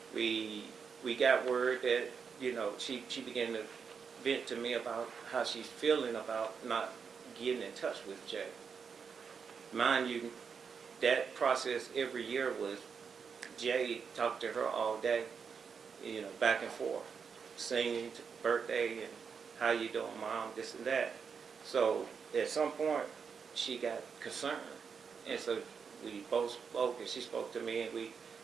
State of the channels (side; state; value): left; quieter; 6.1 dB